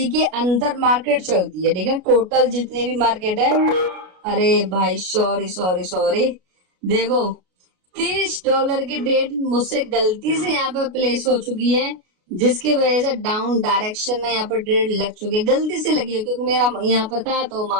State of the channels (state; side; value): late; left; 33 ms